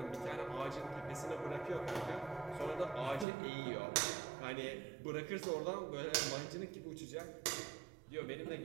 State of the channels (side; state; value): left; drops out; at 3.2 s